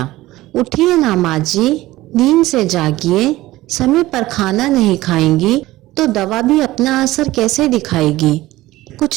उठिए ना माँ जी, नींद से जागिए। समय पर खाना नहीं खाएंगी तो दवा भी अपना असर कैसे दिखाएगी।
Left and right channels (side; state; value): left; quieter; 17.3 dB